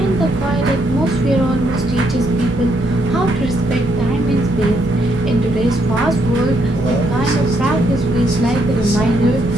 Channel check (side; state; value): both; normal; correlation 0.74